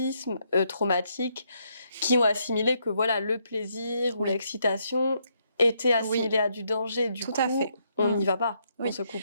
qui ont assimilé que le plaisir ou l'excitation était assimilé à du danger. Du coup, on n'y va pas, on se coupe.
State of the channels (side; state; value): both; inverted; correlation -0.75